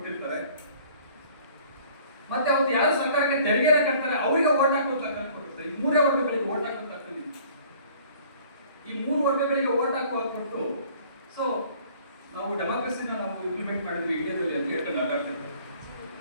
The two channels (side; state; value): both; inverted; correlation -0.53